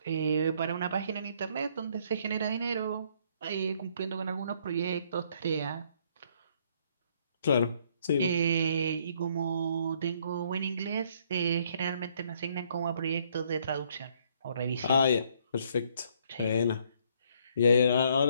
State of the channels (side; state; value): both; inverted; correlation -0.66